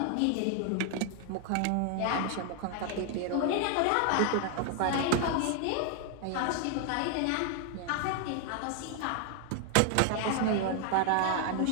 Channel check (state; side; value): different; both; correlation 0.00